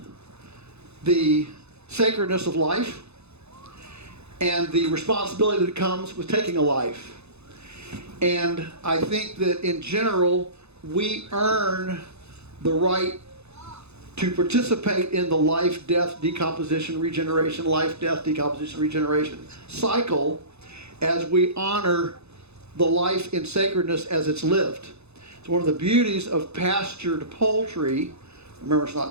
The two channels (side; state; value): left; late; 0.80 ms